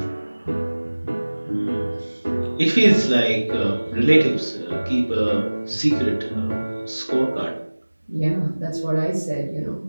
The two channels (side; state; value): both; inverted; correlation -1.00